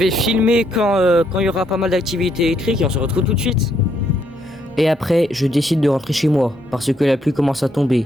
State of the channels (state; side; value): normal; both; correlation 0.73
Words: filmer quand il y aura pas mal d'activités électriques et on se retrouve tout de suite. Et après, je décide de rentrer chez moi parce que la pluie commence à